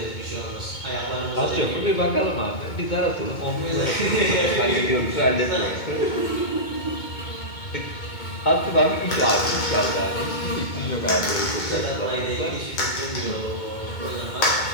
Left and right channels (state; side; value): late; right; 2.2 ms